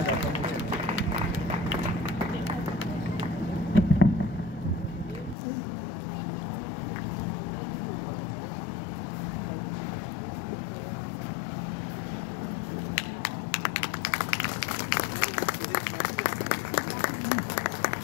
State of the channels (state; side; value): drops out; right; at 5.4 s